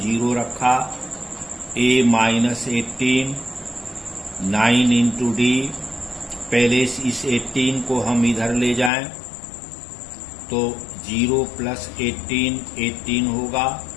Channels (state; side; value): drops out; right; at 8.9 s